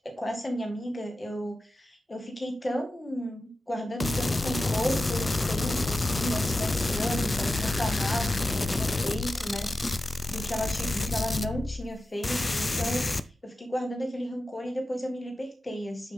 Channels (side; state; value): both; normal; correlation 0.93